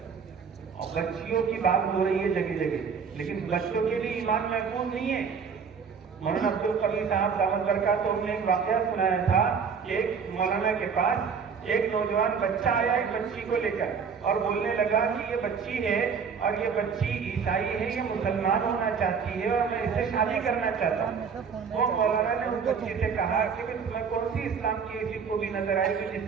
اور بچیوں کی بات ہو رہی ہے جگہ جگہ، لیکن بچوں کے لیے ایمان محفوظ نہیں ہے. مولانا عبدالقوی صاحب دامت برکاتہ نے ایک واقعہ سنایا تھا کہ ایک مولانا کے پاس ایک نوجوان بچہ آیا ایک بچی کو لے کر اور بولنے لگا کہ یہ بچی ہے اور یہ بچی عیسائی ہے، یہ مسلمان ہونا چاہتی ہے اور میں اس سے شادی کرنا چاہتا ہوں. وہ مولانا نے اس بچی سے کہا کہ تمہیں کون سی اسلام کی ایسی خوبی نظر آئی کہ جس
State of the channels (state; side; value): quieter; left; 6.2 dB